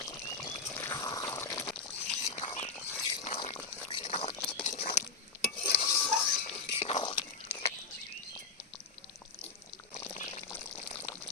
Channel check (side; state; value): right; quieter; 4.6 dB